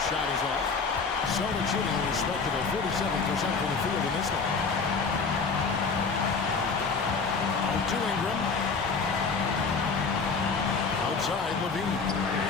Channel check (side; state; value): right; quieter; 4.8 dB